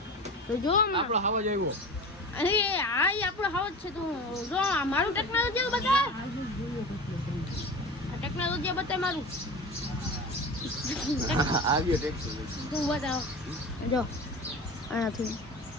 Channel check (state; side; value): normal; both; correlation 0.32